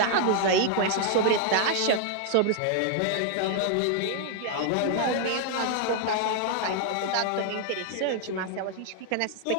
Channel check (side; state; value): both; different; correlation 0.00